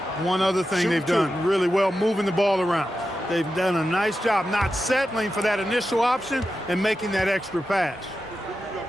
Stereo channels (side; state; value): both; normal; correlation 0.90